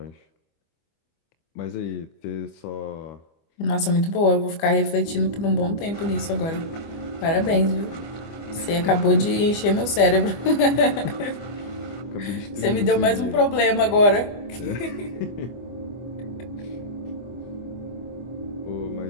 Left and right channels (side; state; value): right; late; 25 ms